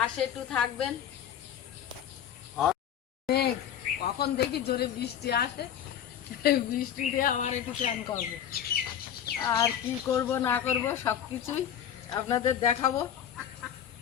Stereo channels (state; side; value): quieter; right; 9.6 dB